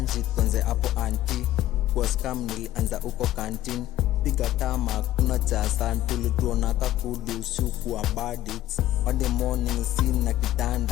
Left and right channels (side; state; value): right; quieter; 14.0 dB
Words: tuanze hapo anti. Kwa scam nilianza uko kantin, piga tama kuna chasan. Tulituona kakudu usiku wa badits, Monday morning scene na